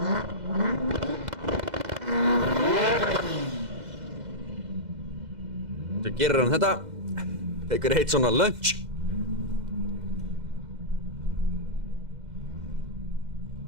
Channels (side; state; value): left; late; 2.0 ms